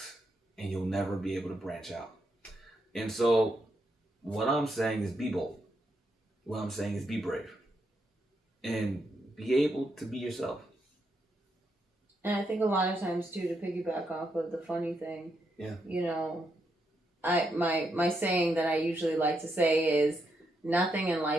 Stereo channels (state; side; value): normal; both; correlation 0.80